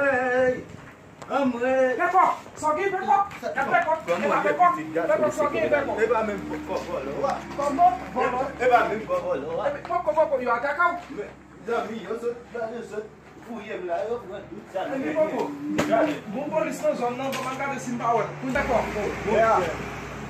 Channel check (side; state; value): both; identical; correlation 1.00